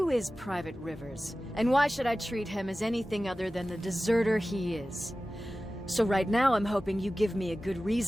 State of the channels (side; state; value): both; normal; correlation 0.96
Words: is Private Rivers? And why should I treat him as anything other than the deserter he is? So right now I'm hoping you give me a good